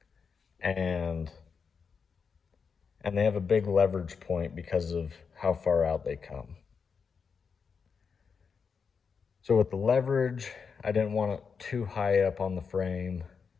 and they have a big leverage point because of how far out they come. So with the leverage, I didn't want it too high up on the frame,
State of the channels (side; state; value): right; quieter; 5.8 dB